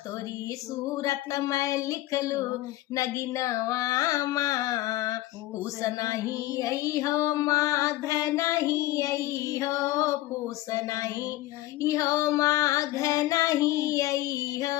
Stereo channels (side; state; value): right; quieter; 16.5 dB